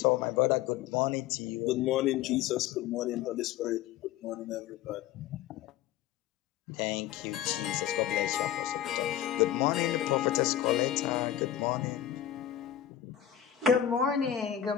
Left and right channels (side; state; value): right; quieter; 11.1 dB